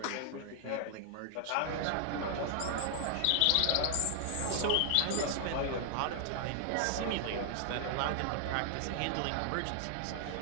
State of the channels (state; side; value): different; both; correlation 0.00